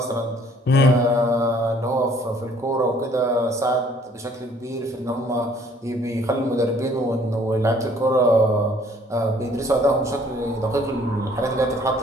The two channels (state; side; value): normal; both; correlation 0.59